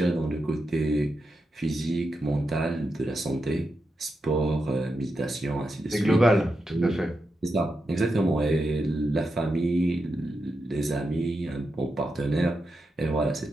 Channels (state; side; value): normal; both; correlation 0.87